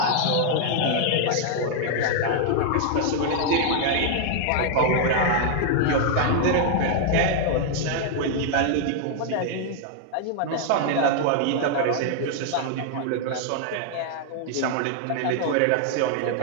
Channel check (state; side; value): different; both; correlation 0.00